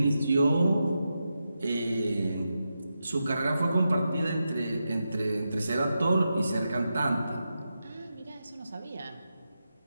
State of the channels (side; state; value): both; inverted; correlation -0.88